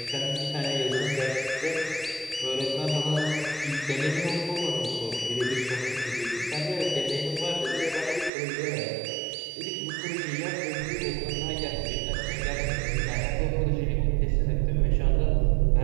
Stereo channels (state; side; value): drops out; left; at 8.3 s